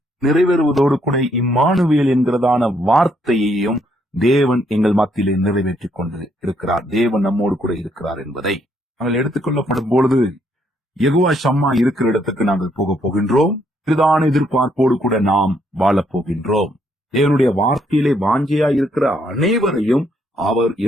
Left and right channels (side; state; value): both; normal; correlation 0.72